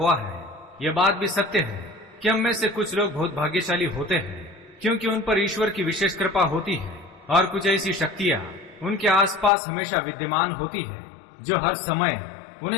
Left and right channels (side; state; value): right; drops out; at 9.5 s